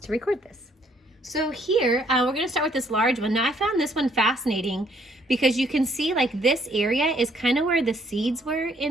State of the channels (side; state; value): both; normal; correlation 0.66